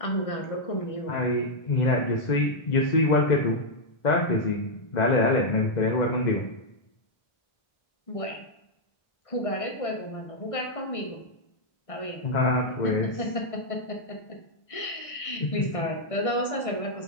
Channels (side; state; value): right; late; 1.6 ms